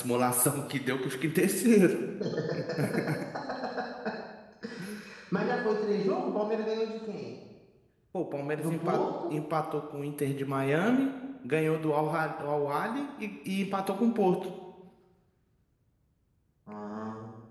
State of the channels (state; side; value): identical; both; correlation 1.00